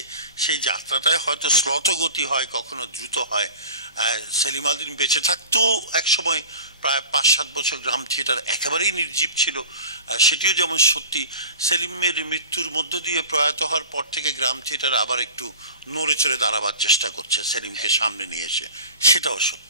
সেই যাত্রাটায় হয়তো শ্লথগতি হয়, কখনো দ্রুত হয়। সেলিম আল দীন বেঁচে থাকতেও একসময় প্রায় 5-7 বছর গ্রাম থিয়েটার একেবারেই নির্জীব ছিল, সেটিও যেমন সত্যি। সেলিমের মৃত্যুর মধ্য দিয়ে প্রয়াত হওয়ার পর থেকে গ্রাম থিয়েটার আবার একটু নড়ে চড়ে দাঁড়াবার চেষ্টা করছে সেলিমকে সামনে নিয়ে এসে, সেটাও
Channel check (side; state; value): both; inverted; correlation -0.38